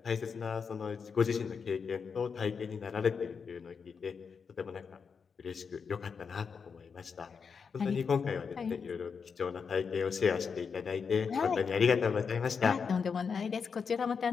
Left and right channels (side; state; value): right; quieter; 5.9 dB